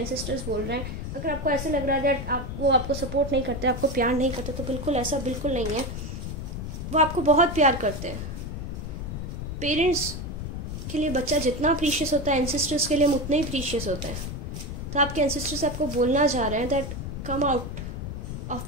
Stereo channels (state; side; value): noise; left; rumble, 6 dB below the sound